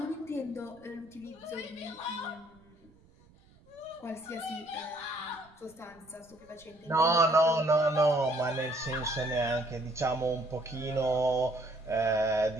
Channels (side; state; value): right; noise; rumble, 28 dB below the sound